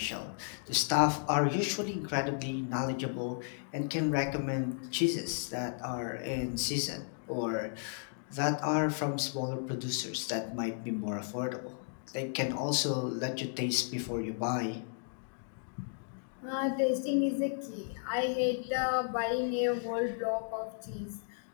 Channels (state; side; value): silent; right; digital silence